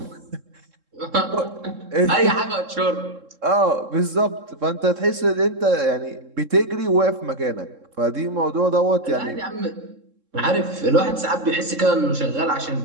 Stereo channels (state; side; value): late; left; 3.7 ms